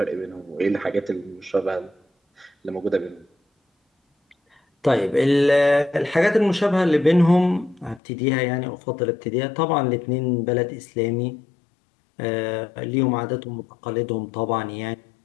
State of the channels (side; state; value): right; drops out; at 8.0 s